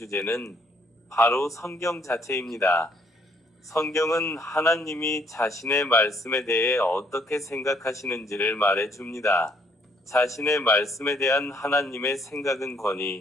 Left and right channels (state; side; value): normal; both; correlation 0.66